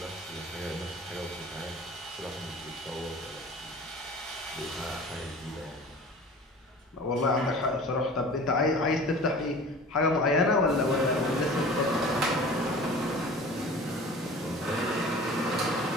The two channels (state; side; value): normal; both; correlation 0.42